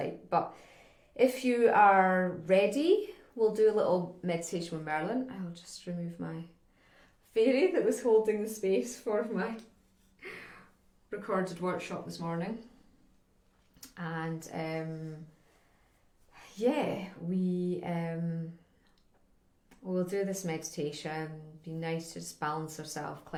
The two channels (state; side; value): identical; both; correlation 1.00